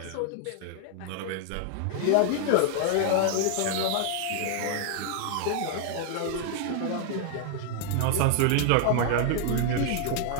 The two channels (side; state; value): both; different; correlation 0.00